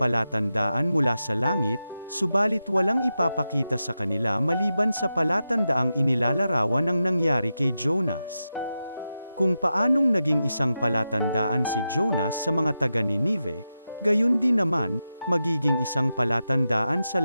mula sa langit, subalit walang ipapakita sa kanila maliban sa palatandaang inilalarawan ng nangyari kay Jonas. Kung paanong naging isang palatandaan si Jonas sa mga taga-Ninive, gayon din naman, magiging isang palatandaan sa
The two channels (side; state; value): both; inverted; correlation -0.90